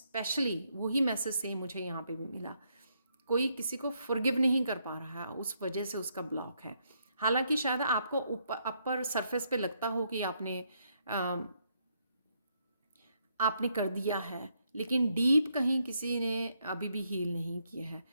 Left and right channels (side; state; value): both; inverted; correlation -0.75